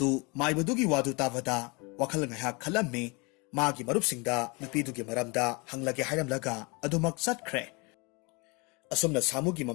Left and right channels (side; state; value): right; quieter; 28.4 dB